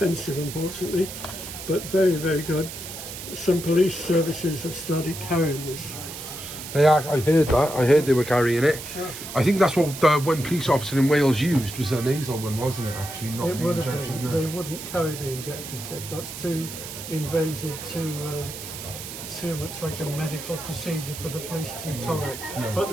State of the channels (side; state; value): right; noise; hiss, 10 dB below the sound